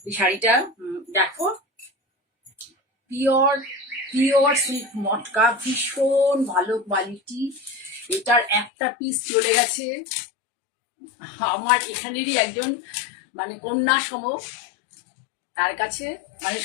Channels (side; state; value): right; drops out; at 8.7 s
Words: এই শাড়িটা দেখো, পিওর পিওর সিল্ক মটকা, ভীষণ ভালো কোয়ালিটি। এটার একটা পিস চলে গেছে আমার এখানেরই একজন মানে কন্যা সম, তার কাছে। মানে